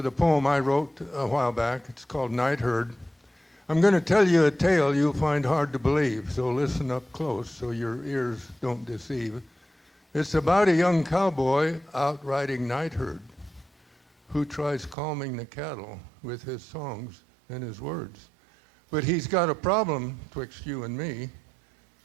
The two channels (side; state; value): left; drops out; at 15.0 s